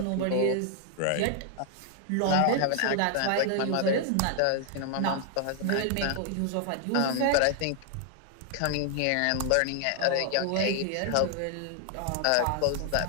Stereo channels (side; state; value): both; different; correlation 0.00